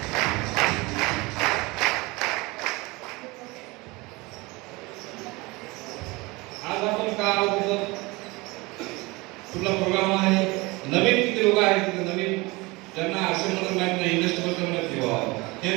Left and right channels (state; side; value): quieter; left; 23.8 dB